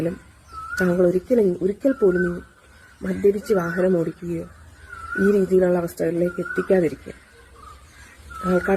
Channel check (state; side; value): identical; both; correlation 1.00